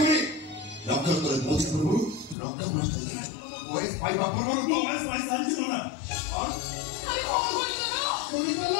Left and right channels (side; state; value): right; drops out; at 2.4 s